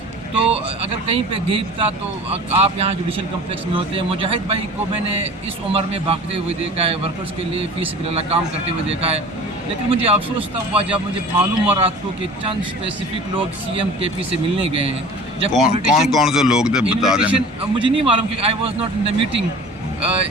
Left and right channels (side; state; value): both; normal; correlation 0.41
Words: تو اگر کہیں پہ گیپ تھا تو آپ یہاں جوڈیشل کمپلیکس میں ہوتے ہیں. مجاہد بھائی کو میں نے اس عمر میں بھاگتے ہوئے دیکھا ہے, ورکرز کے لیے فی سبیل اللہ کام کرتے ہوئے دیکھا ہے, لیکن مجھے افسوس تب ہوا جب مجھے معلوم ہوا رات کو کہ چند اسپیسیفک لوگ سی ایم کے پی سے ملنے گئے ہیں. جب کون سے لوگ تھے بتا دیں. مجھے نہیں معلوم کہ I was not in the meeting,